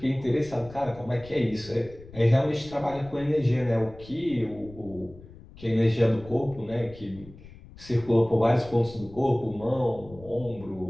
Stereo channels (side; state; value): left; noise; rumble, 19 dB below the sound